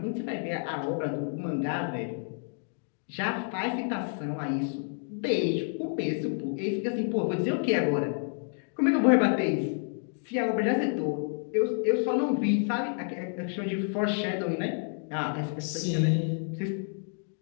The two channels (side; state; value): right; silent; 57 dB below the other